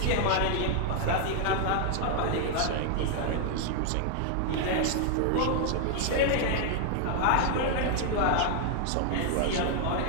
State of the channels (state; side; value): different; both; correlation 0.00